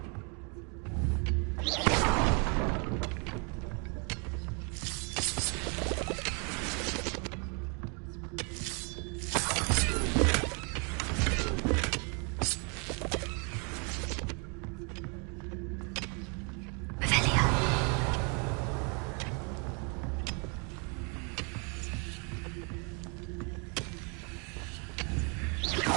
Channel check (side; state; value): left; quieter; 35.3 dB